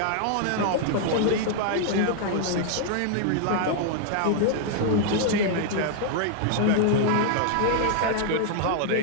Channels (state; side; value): different; both; correlation 0.00